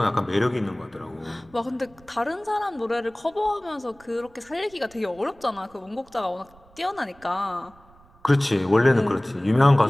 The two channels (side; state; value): right; noise; rumble, 27 dB below the sound